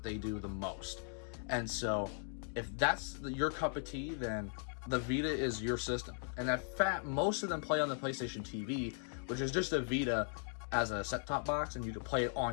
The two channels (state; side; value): silent; right; 52 dB below the other